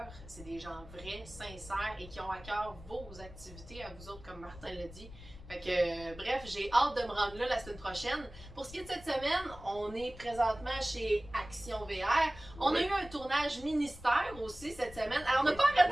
c'est des gens vrais, sincères et qui ont à cœur vos activités à vous autres, comme Martin l'a dit. Fait que, bref, j'ai hâte de me rendre là la semaine prochaine. Pour ce qui est de cette semaine, on est présentement chez Action VR. On a eu un tournage ministère aussi cette semaine. Alors, on n'a pas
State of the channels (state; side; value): noise; left; rumble, 16 dB below the sound